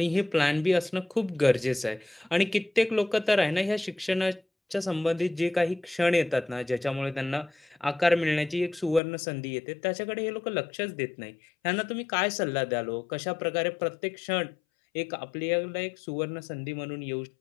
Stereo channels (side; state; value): right; drops out; at 9.0 s